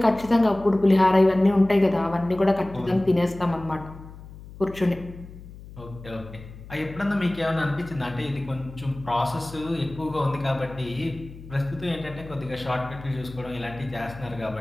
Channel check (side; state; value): left; noise; hum, 16 dB below the sound